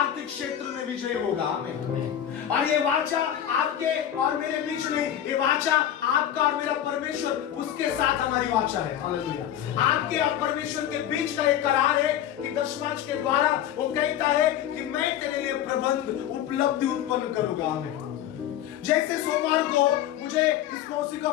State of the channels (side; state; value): right; quieter; 10.9 dB